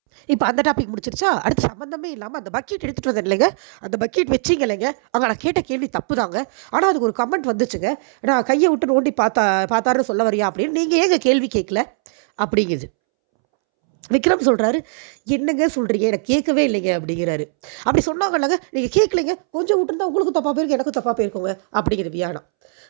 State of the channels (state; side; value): silent; left; 66 dB below the other